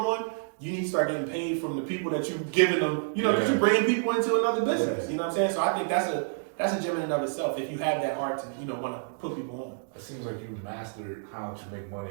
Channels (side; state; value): left; silent; digital silence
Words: you need to start getting paid from the people that you've given them, because you're bringing people into another business. Yeah. You know what I'm saying? So I think that's a gem in and of itself if you have that heart to, want to put people on. It seems like you mastered how to make